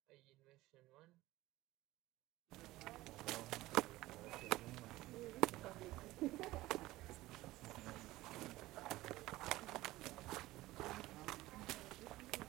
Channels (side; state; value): left; quieter; 17.7 dB